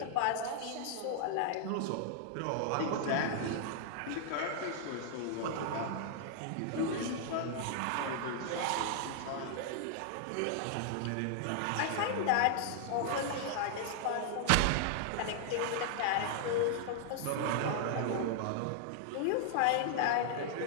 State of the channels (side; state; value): both; different; correlation -0.01